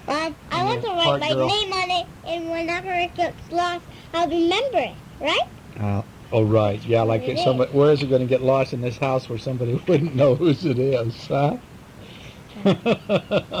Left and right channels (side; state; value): both; identical; correlation 1.00